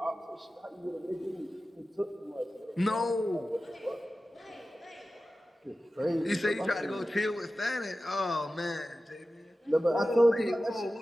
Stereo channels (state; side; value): normal; both; correlation 0.94